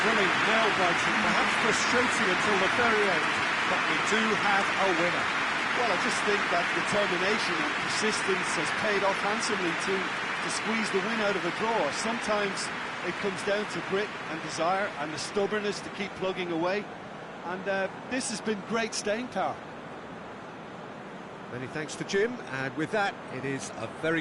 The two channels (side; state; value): both; identical; correlation 1.00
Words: Thrilling, nail-biting, perhaps frustrating until the very end, but we do have a winner. Well, I just think that determination and persistence has paid off handsomely to squeeze the win out of a draw. Sometimes it comes down to grit and desire and the stubbornness to keep plugging away. And this has been great staying power. Many thanks to Jim, and with that, it is a very